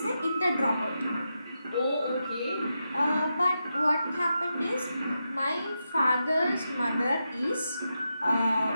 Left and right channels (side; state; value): both; inverted; correlation -0.87